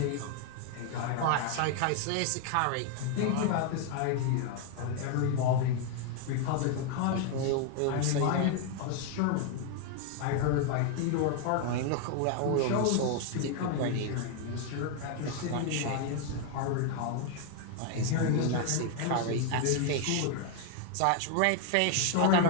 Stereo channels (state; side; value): different; both; correlation 0.00